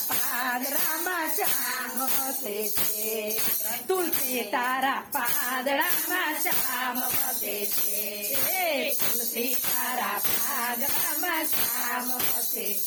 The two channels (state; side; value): identical; both; correlation 1.00